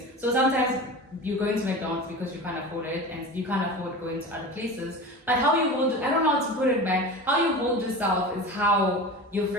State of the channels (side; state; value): both; normal; correlation 0.32